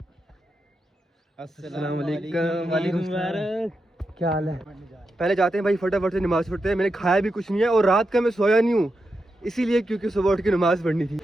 अस्सलाम वालेकुम। क्या हाल है? पहले जाते हैं भाई, फटाफट से नमाज पढ़ते हैं। मैंने खाया भी कुछ नहीं है और रात का मैं सोया नहीं हूँ इसीलिए क्योंकि सुबह उठ के नमाज पढ़नी थी।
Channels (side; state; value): both; normal; correlation 0.87